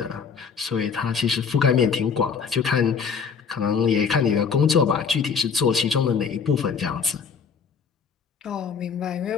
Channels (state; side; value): quieter; right; 6.0 dB